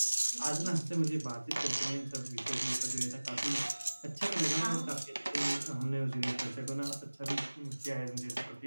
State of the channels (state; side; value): inverted; both; correlation -1.00